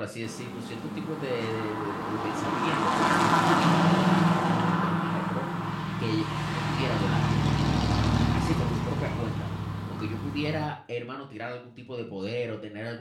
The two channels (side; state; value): both; identical; correlation 1.00